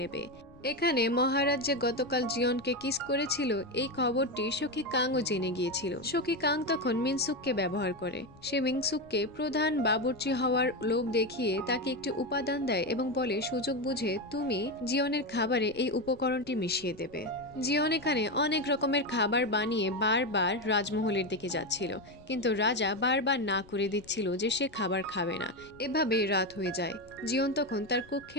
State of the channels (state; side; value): noise; left; rumble, 24 dB below the sound